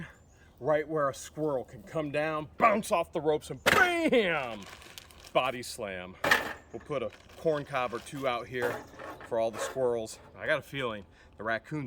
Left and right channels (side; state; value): both; identical; correlation 1.00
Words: right where a squirrel can come down, bounce off the ropes, and bam! Body slam. We'll put a corn cob or 2 out here for all the squirrels. I got a feeling the